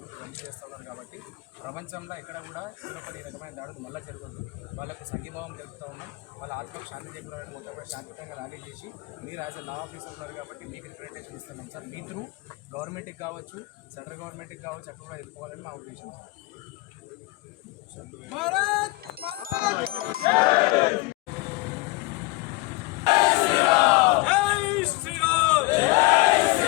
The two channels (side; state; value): right; quieter; 22.5 dB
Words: ఇవన్నీ చేస్తూ ఉన్నారు. కాబట్టి ప్రపంచంలో ఎక్కడ కూడా హిందువులపై ఈ రకమైన దాడులు మళ్ళీ జరగద్దు. వాళ్ళకు సంఘీభావం తెలుపుతూ ఉన్నాం. వాళ్ళ ఆత్మకు శాంతి చేకూరాలని మొట్టమొదటి శాంతియుతంగా ర్యాలీ చేసి మీరు యాజ్ ఎ లా ఆఫీసర్ ఉన్నారు కాబట్టి మీకు రిప్రజెంటేషన్ ఇస్తున్నాం సార్. మీ త్రూ గవర్నమెంట్కి కావచ్చు, సెంట్రల్ గవర్నమెంట్కి కావచ్చు, అక్కడ కూడా ఎదుర్కోవాలని మా ఉద్దేశం సార్.